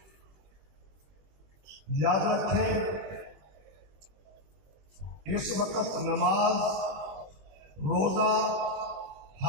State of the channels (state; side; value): late; left; 21 ms